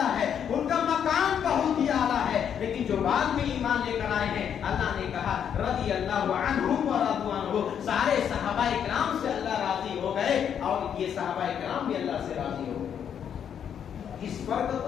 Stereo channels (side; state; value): right; quieter; 8.5 dB